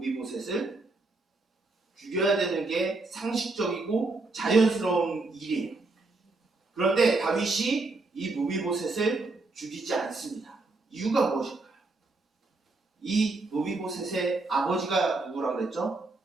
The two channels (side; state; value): left; quieter; 3.4 dB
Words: 죽여야 되는 게 상식적이고 자연스러운 일이에요. 그런데 다윗이 이 무비보셋을 죽이지 않습니다. 이유가 무엇일까요? 이 무비보셋의 아버지가 누구라고 그랬죠?